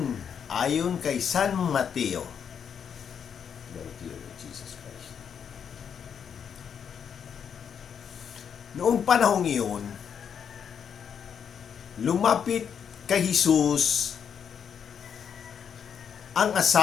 ayon kay San Mateo. Noong panahong iyon, lumapit kay Jesus ang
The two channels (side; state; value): right; quieter; 7.6 dB